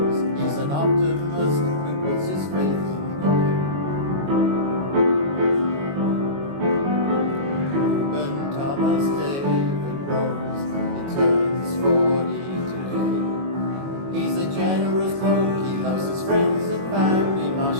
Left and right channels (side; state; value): left; late; 22 ms